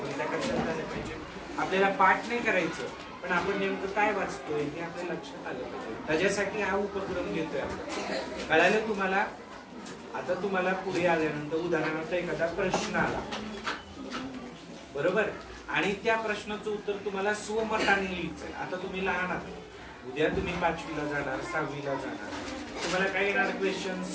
त्या कशात झालं पाहिजे. आपल्याला पाठ नाही करायचं, पण आपण नेमकं काय वाचतोय हे आपल्या लक्षात आलं पाहिजे. त्याच्यासाठी हा उपक्रम घेतोय आपण. कळालं तुम्हाला. आता तुम्हाला पुढे आल्यानंतर उदाहरणार्थ एखादा प्रश्न आला, बरोबर, आणि त्या प्रश्नाचं उत्तर तुम्हाला स्वमताने लिहायचंय. आता तुम्ही लहान आहात, उद्या तुम्ही 5वीला जाणार, 6वीला जाणार. तुम्हाला काय येणार क्वेश्चन.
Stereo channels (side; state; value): both; identical; correlation 1.00